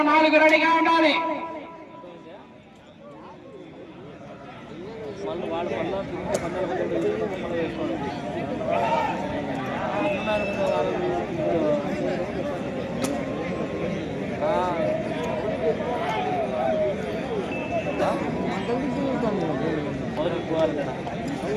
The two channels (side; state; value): both; identical; correlation 1.00